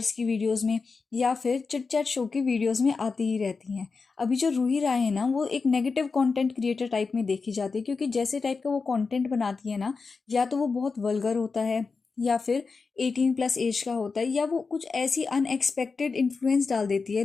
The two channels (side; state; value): right; quieter; 4.6 dB